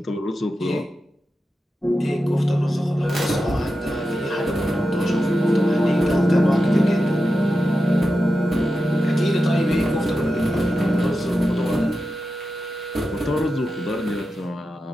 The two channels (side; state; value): both; normal; correlation 0.90